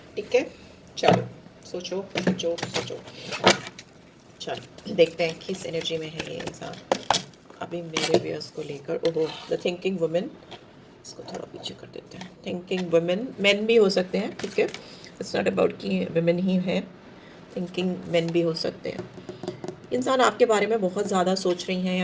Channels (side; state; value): both; identical; correlation 1.00